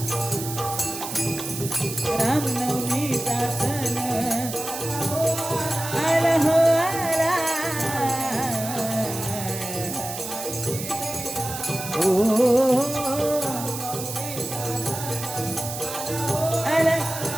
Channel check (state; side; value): noise; right; hiss, 8 dB below the sound